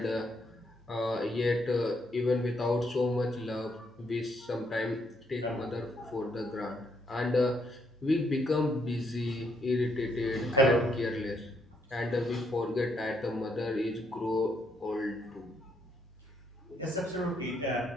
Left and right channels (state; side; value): normal; both; correlation 0.74